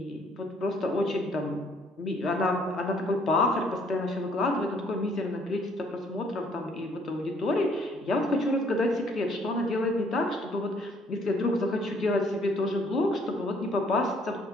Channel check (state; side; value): normal; both; correlation 0.63